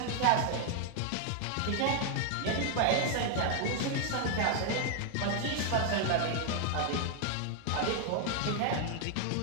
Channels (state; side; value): different; both; correlation 0.00